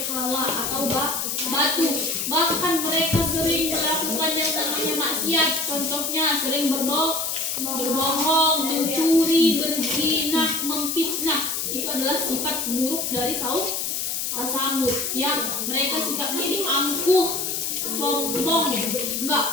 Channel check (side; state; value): left; noise; hiss, 1 dB below the sound